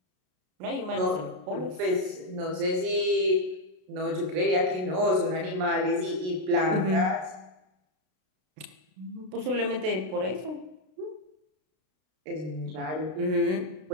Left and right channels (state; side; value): late; left; 32 ms